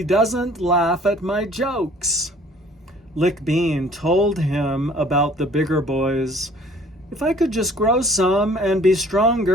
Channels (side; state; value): both; normal; correlation 0.54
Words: doesn't laugh at my jokes? Lick Bean told him about the bigger boys. If I could just grow some and be